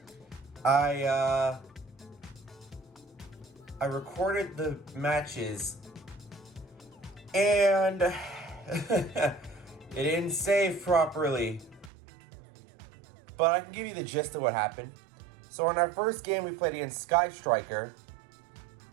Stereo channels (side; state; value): left; drops out; at 11.9 s